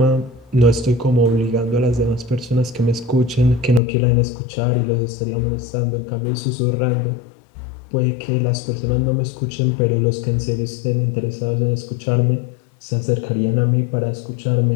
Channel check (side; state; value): right; drops out; at 3.8 s